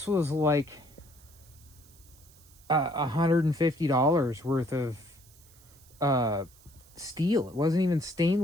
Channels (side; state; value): right; noise; hiss, 26 dB below the sound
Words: was like $150 worth of steel. It wasn't even